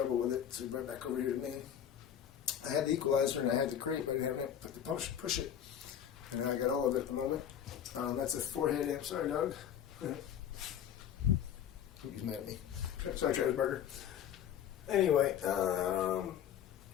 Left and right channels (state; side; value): quieter; right; 9.4 dB